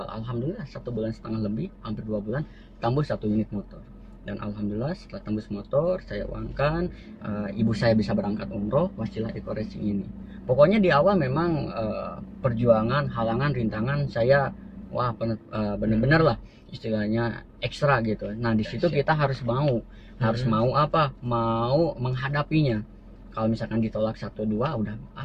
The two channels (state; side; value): identical; both; correlation 1.00